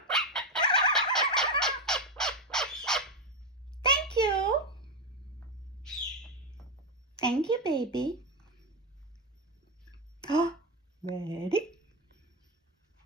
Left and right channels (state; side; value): normal; both; correlation 0.10